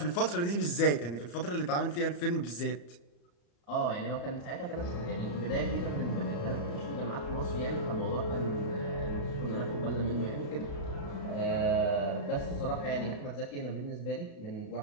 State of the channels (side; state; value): right; late; 34 ms